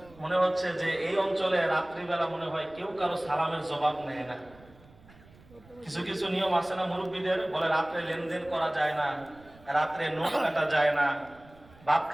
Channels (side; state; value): right; noise; rumble, 25 dB below the sound